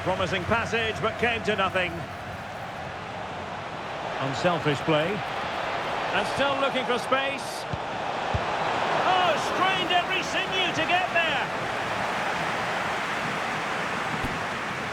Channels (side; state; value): both; identical; correlation 1.00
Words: Promising passage, but came to nothing. Unselfish play. And still looking for space. Oh, strained every sinew to get there.